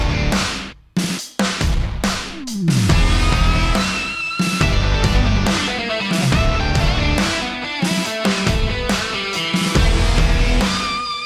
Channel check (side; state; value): both; identical; correlation 1.00